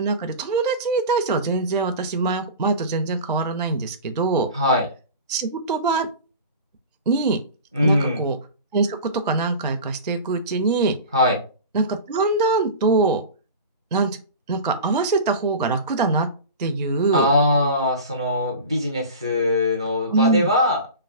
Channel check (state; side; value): inverted; both; correlation -0.33